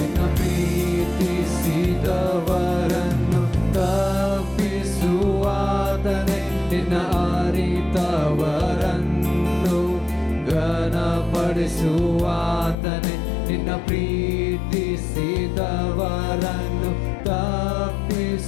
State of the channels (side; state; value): right; drops out; at 12.8 s